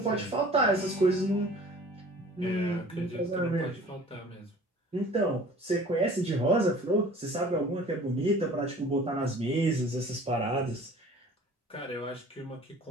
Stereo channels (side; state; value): both; normal; correlation 0.47